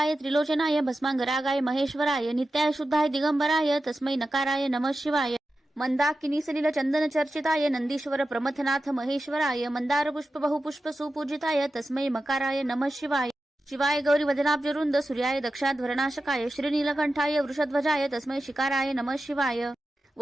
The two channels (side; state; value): both; normal; correlation 0.92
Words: त्रिलोचनाय भस्मांगरागाय महेश्वराय नित्याय शुद्धाय दिगंबराय तस्मै नकाराय नमः शिवाय मंदाकिनी सलिल चंदन चर्चिताय नंदीश्वर प्रमथनाथ महेश्वराय मंदार पुष्प बहुपुष्प सुपूजिताय तस्मै मकाराय नमः शिवाय शिवाय गौरी वदनाब्जरुंद सूर्याय दक्षाध्वरनाशकाय श्रीनीलकंठाय वृषध्वजाय तस्मै शिकाराय नमः शिवाय